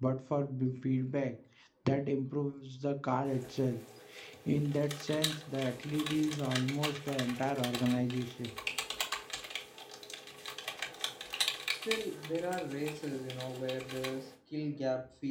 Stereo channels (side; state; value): both; identical; correlation 1.00